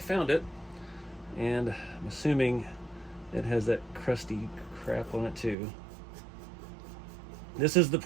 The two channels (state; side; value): drops out; left; at 5.6 s